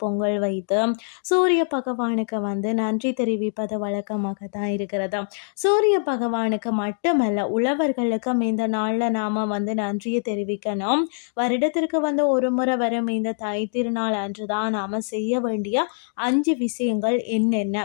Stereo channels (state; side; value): silent; right; digital silence